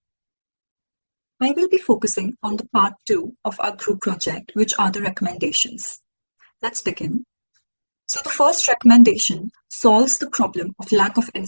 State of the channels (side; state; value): both; inverted; correlation -1.00